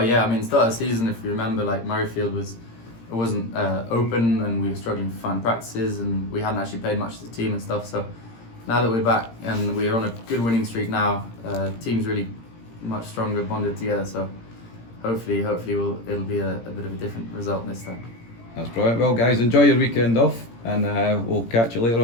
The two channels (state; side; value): late; right; 17 ms